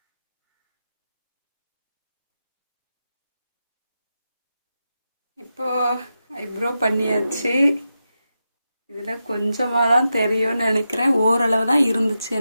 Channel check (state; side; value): inverted; both; correlation -0.89